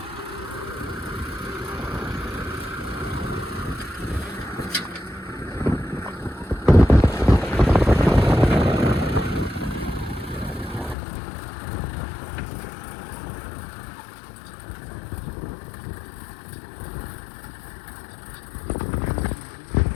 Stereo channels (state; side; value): drops out; right; at 11.0 s